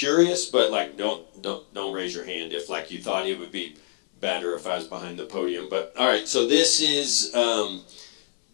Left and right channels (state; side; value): silent; right; digital silence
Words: but like don't raise your hand if like you thought it would be better if I was behind the podium. But all right, so this is